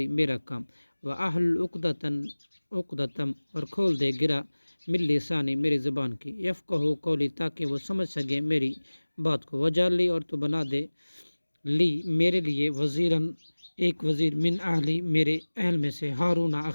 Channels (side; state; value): both; inverted; correlation -1.00